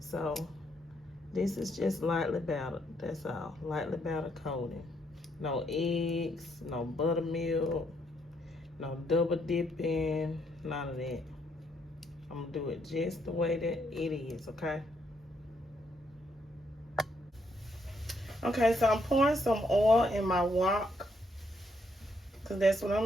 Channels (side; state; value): both; normal; correlation 0.74